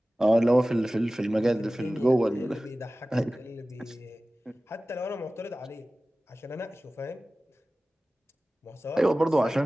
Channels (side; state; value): both; normal; correlation 0.97